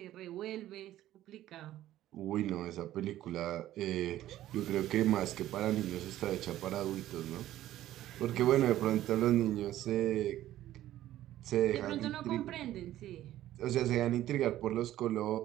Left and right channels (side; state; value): left; quieter; 13.6 dB